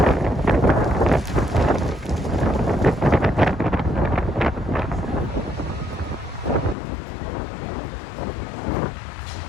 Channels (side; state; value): right; drops out; at 6.8 s